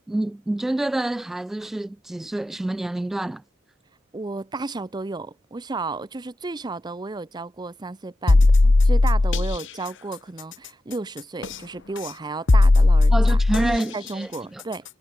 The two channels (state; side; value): normal; both; correlation 0.93